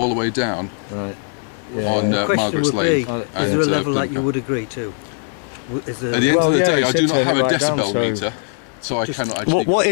the way down Right. on The question Margaret's would be, Lane. is there a and, level that you Plymouth. would agree to? Is there, At the end Well, of the yeah, day, it I do said not turn have it a right down, decibel so- meter, so I Just- cannot actually. What go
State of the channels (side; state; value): right; silent; 56 dB below the other